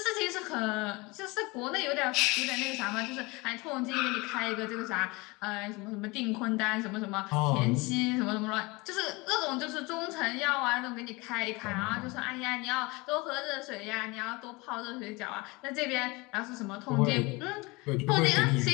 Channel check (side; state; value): right; quieter; 24.9 dB